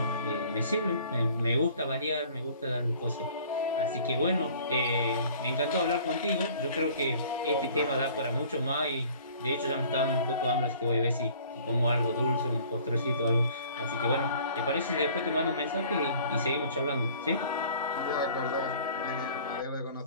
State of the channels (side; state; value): both; inverted; correlation -0.52